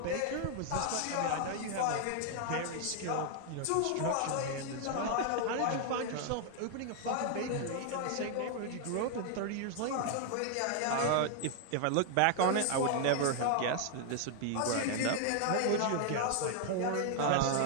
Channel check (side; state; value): both; different; correlation 0.00